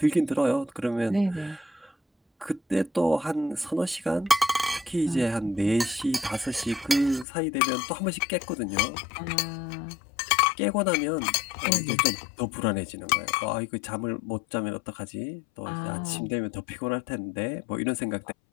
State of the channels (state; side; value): drops out; right; at 7.2 s